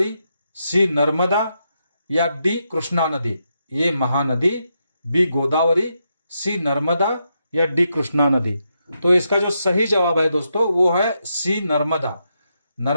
C Narmada या डी कृष्णा नदी? A Mahanadi, B Godavari, C Narmada या डी कृष्णा नदी? तो इसका जो सही जवाब है दोस्तों वो है सी नर्मदा।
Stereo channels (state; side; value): inverted; both; correlation -0.83